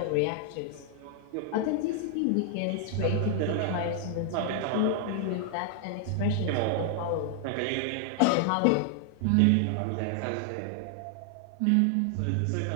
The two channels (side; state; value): both; different; correlation 0.00